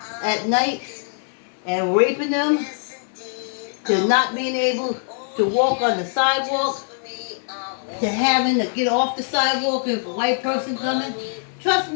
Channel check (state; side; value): silent; right; digital silence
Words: at night and raping them to not being able to walk on the sidewalk, to having to get off the sidewalk if a white person coming. Trust